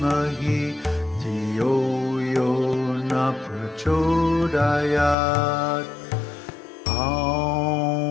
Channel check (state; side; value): drops out; right; at 5.2 s